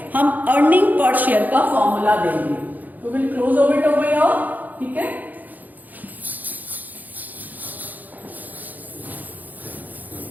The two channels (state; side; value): late; left; 0.082 ms